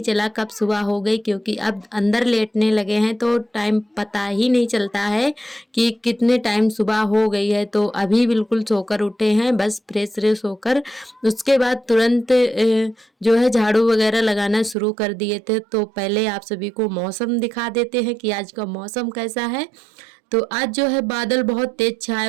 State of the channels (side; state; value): left; drops out; at 14.8 s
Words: चला कब सुबह हो गई, क्योंकि अब अंदर लेटने लगे हैं तो टाइम पता ही नहीं चलता है कि कितने टाइम सुबह हो गई है। तो अभी बिल्कुल सोकर उठे हैं, बस फ्रेश फ्रेश होकर उसके बाद तुरंत जो है झाड़ू वगैरह लगाना शुरू कर दिए थे। तो पहले आप सभी को मौसम दिखा देते हैं कि आज का मौसम कैसा है। तो आज जो है बादल बहुत तेज छाए